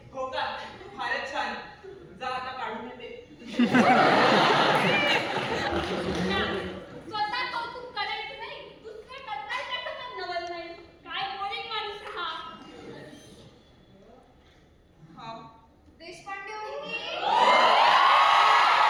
हो का, फारच छान. जा आता काढून येते. ना, स्वतः कौतुक करायचं नाही, दुसरं करताय त्याचं पण नवल नाही. काय बोरिंग माणूस आहे हा. हा देशपांडे वहिनी.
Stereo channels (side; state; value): both; identical; correlation 1.00